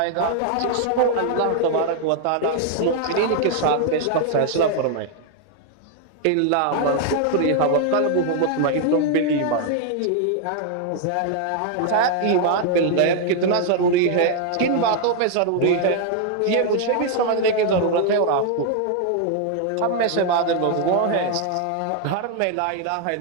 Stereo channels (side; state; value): both; different; correlation 0.00